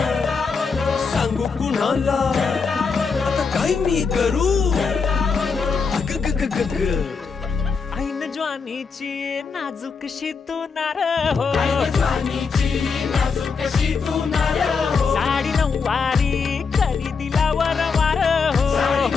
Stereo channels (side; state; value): right; quieter; 5.2 dB